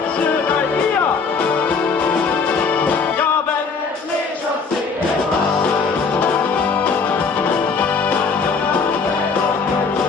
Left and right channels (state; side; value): quieter; right; 5.0 dB